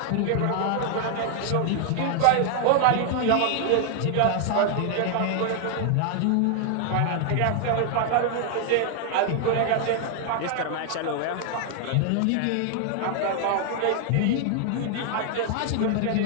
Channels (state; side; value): different; both; correlation 0.00